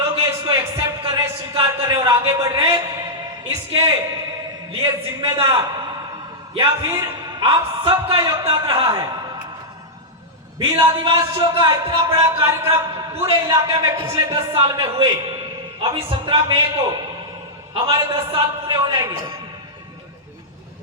हैं, इसको एक्सेप्ट कर रहे, स्वीकार कर रहे और आगे बढ़ रहे। इसके लिए जिम्मेदार या फिर आप सबका योगदान रहा है। भील आदिवासियों का इतना बड़ा कार्यक्रम पूरे इलाके में पिछले 10 साल में हुए। अभी 17 मई को हमारे 10 साल पूरे हो जाएंगे।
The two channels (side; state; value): both; normal; correlation -0.08